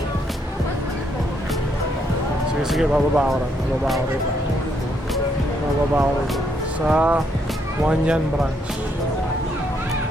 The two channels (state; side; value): normal; both; correlation 0.74